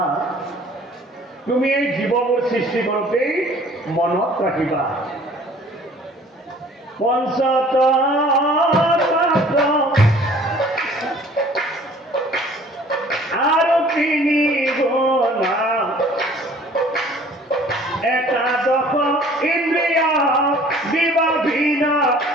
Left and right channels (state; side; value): normal; both; correlation 0.52